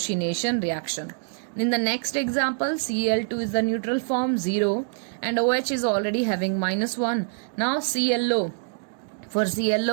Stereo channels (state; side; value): silent; left; digital silence